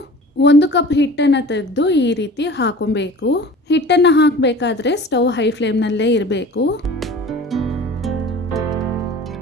1 ಕಪ್ ಹಿಟ್ಟನ್ನು ತೆಗೆದು ಈ ರೀತಿ ಹಾಕೊಬೇಕು. ಹಿಟ್ಟನ್ನು ಹಾಕಬೇಕಾದ್ರೆ ಸ್ಟವ್ ಹೈ ಫ್ಲೇಮ್ನಲ್ಲೇ ಇರಬೇಕು.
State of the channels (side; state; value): both; normal; correlation 0.41